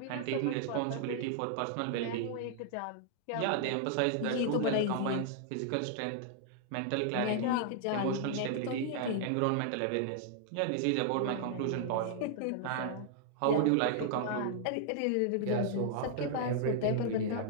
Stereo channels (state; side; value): different; both; correlation -0.01